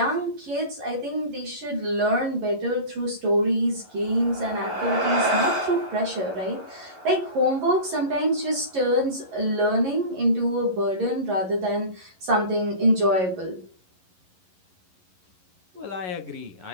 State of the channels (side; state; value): left; late; 11 ms